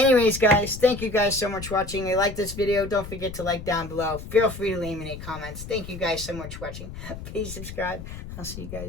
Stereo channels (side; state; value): left; noise; rumble, 11 dB below the sound